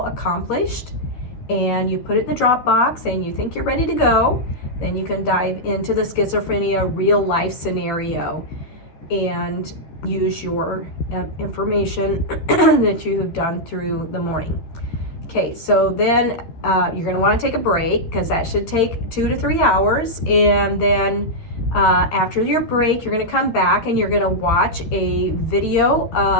accomplished and you put it in the Dropbox and you think you're ready to go, then you can dive into the schizophrenia real life scenario and use your information that you have done through the morning. Okay, so then you're going to want to take a break because that should take 2 to 3 hours. And then after your break, you're going to come back and you're going to watch a video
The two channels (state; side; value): late; right; 13 ms